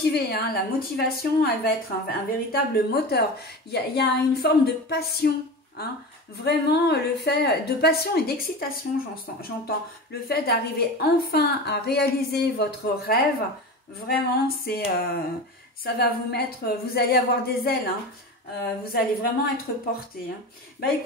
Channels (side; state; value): both; normal; correlation 0.29